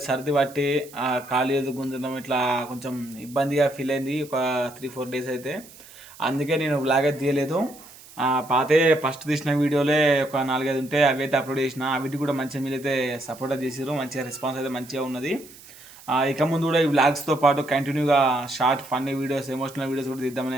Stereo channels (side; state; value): right; noise; hiss, 21 dB below the sound